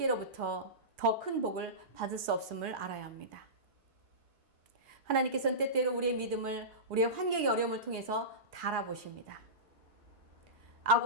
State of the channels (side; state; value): left; late; 4.7 ms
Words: 더 큰 복을 받을 수 없음을 알아야 합니다. 하나님께서는 때때로 우리의 믿음을 우리의 환경의 어려움을 통해서 달아보십니다.